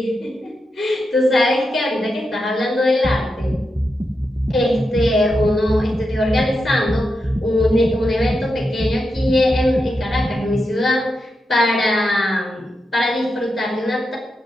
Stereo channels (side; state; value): both; normal; correlation 0.87